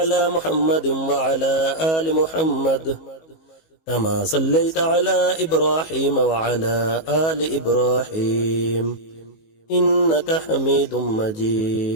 محمد وعلى آل محمد كما صليت على إبراهيم وعلى آل إبراهيم إنك حميد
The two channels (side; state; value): right; late; 19 ms